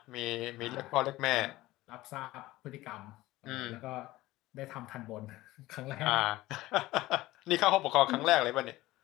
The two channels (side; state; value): right; quieter; 17.8 dB